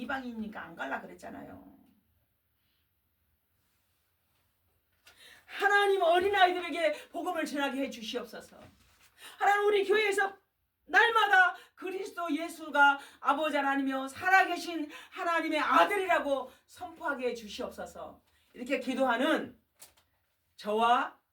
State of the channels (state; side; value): identical; both; correlation 1.00